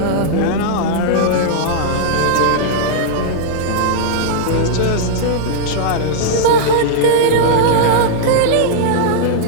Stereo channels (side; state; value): both; different; correlation -0.02